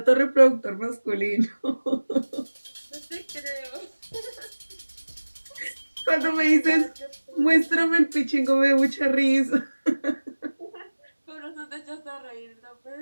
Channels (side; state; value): both; inverted; correlation -1.00